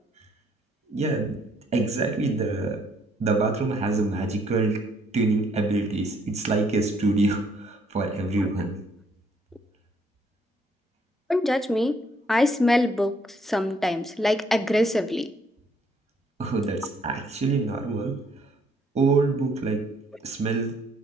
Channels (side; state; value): both; normal; correlation 0.67